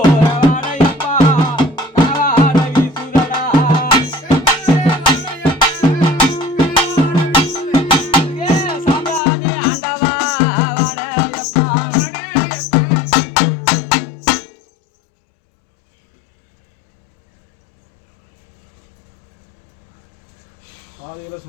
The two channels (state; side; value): drops out; right; at 9.2 s